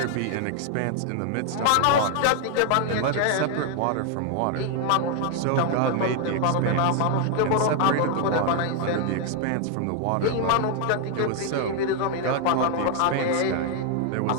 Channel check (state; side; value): different; both; correlation 0.00